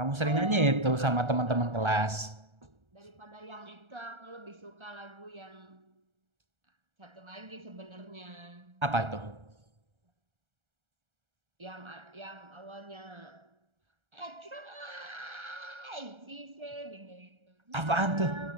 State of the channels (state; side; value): late; left; 1.3 ms